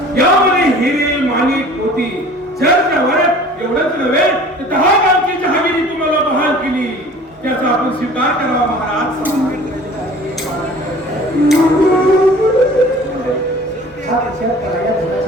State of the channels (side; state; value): both; normal; correlation 0.46